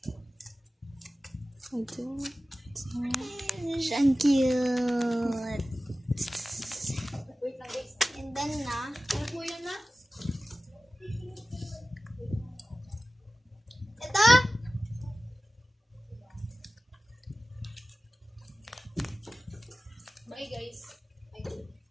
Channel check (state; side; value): normal; both; correlation 0.96